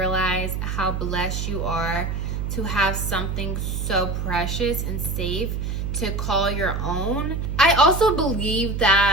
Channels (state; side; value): noise; right; hum, 2 dB below the sound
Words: how blessed you are to have something so precious and safe to call your own. I also believe